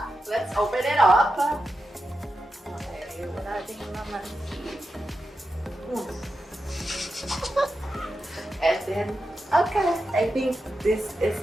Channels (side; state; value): both; normal; correlation 0.89